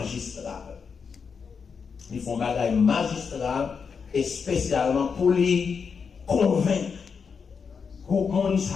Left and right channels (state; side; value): quieter; right; 5.9 dB